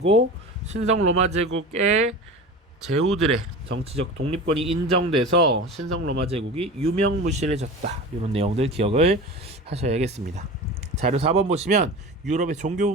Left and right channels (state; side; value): normal; both; correlation 0.32